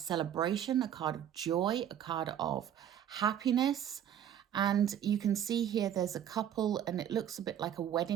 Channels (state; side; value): quieter; left; 10.0 dB